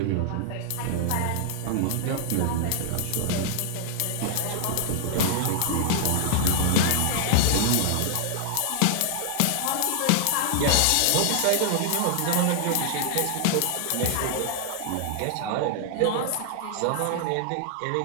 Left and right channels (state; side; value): different; both; correlation -0.01